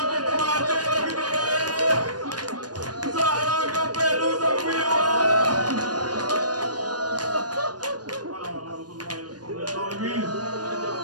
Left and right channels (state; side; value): late; left; 0.69 ms